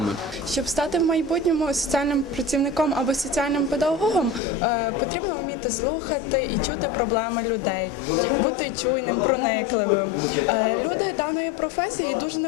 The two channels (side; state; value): right; drops out; at 4.4 s